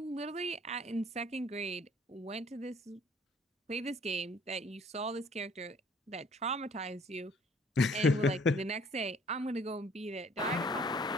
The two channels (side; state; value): both; normal; correlation 0.57